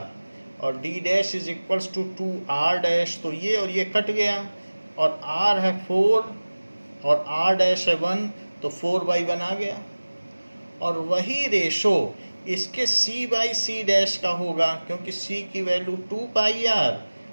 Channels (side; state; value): both; inverted; correlation -1.00